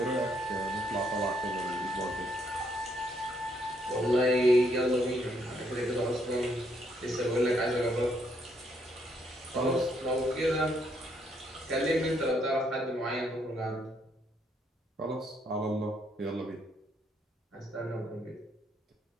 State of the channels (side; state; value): both; normal; correlation 0.72